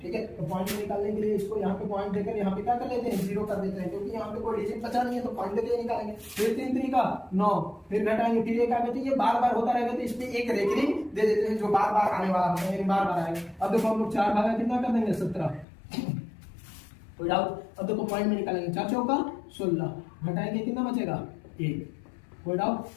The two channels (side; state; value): right; drops out; at 15.7 s